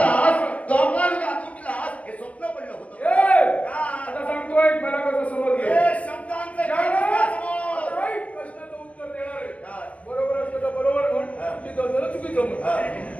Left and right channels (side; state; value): right; late; 0.065 ms